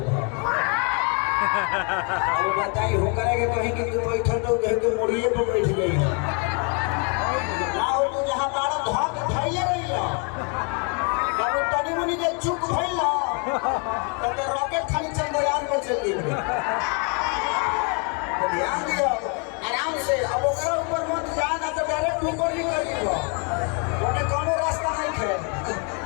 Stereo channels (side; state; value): right; quieter; 36.6 dB